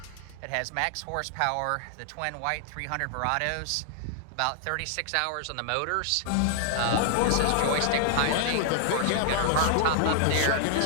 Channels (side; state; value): both; different; correlation -0.01